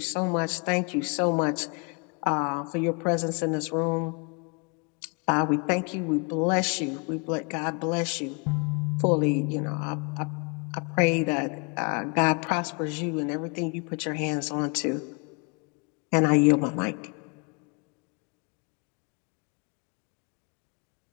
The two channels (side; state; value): right; quieter; 34.2 dB